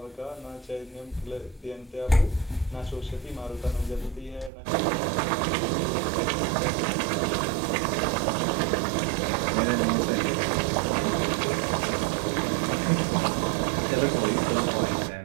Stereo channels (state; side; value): drops out; left; at 4.5 s